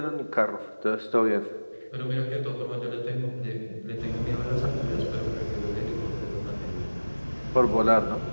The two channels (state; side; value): inverted; both; correlation -1.00